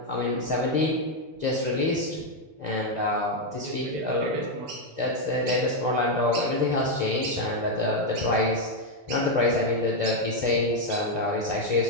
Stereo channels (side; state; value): left; late; 6.9 ms